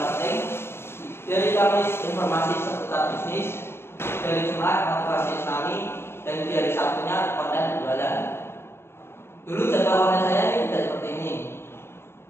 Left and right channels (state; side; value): late; right; 0.12 ms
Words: dari Kamis informasi seputar bisnis, dari Jumat motivasi Islami, dan di hari Sabtunya konten jualan. Dulu jadwal konten saya ini tidak seperti ini.